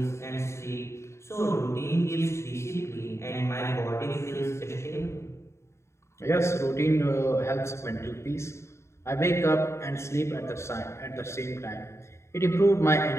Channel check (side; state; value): right; late; 0.13 ms